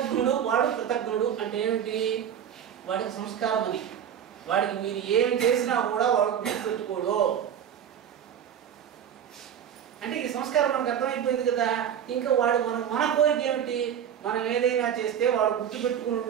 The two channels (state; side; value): quieter; left; 9.0 dB